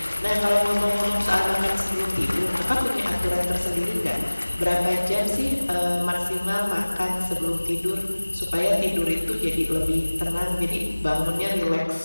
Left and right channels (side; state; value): both; inverted; correlation -1.00